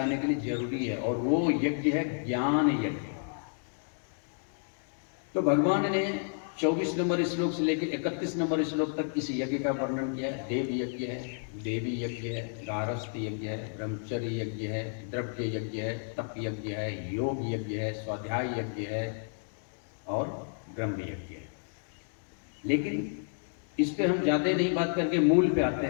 के लिए जरूरी है। और वो यज्ञ है ज्ञान यज्ञ। तो भगवान ने 24 नंबर श्लोक से लेकर 31 नंबर श्लोक तक इस यज्ञ का वर्णन किया है। देव यज्ञ है, देवी यज्ञ है, गारस्थ यज्ञ है, ब्रह्मचर्य यज्ञ है, द्रव्य यज्ञ है, तप यज्ञ है, योग यज्ञ है, स्वाध्याय यज्ञ है और ब्रह्म यज्ञ है। लेकिन इस पे हम ज्यादा नहीं बात करके मूल पे आते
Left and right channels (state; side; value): silent; right; digital silence